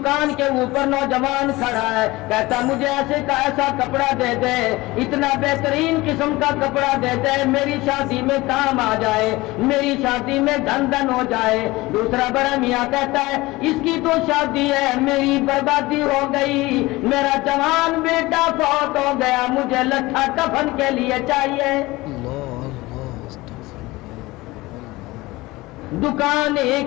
کے اوپر نوجوان کھڑا ہے، کہتا مجھے ایسے کا ایسا کپڑا دے دے، اتنا بہترین قسم کا کپڑا دے دے، میری شادی میں کام آ جائے، میری شادی میں دھن دھن ہو جائے۔ دوسرا بڑا میاں کہتا ہے اس کی تو شادی ہے، میری بربادی ہو گئی، میرا جوان بیٹا فوت ہو گیا، مجھے لٹھا کفن کے لیے چاہیے۔ دکان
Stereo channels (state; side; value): quieter; right; 20.4 dB